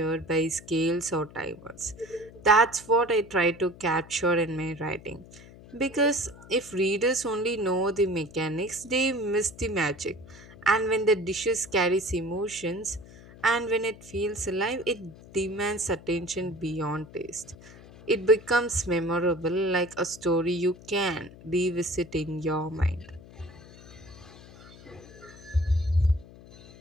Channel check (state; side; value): noise; left; hum, 20 dB below the sound